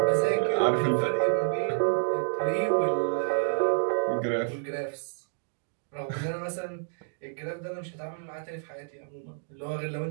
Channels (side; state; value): left; silent; digital silence